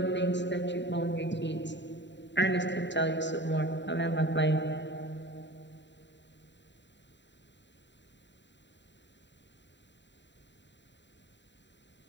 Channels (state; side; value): late; right; 0.52 ms